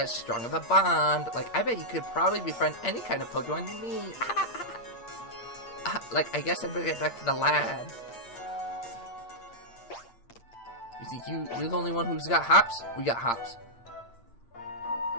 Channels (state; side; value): late; right; 8.6 ms